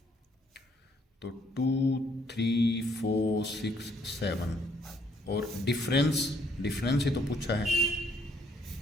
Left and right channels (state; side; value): normal; both; correlation 0.67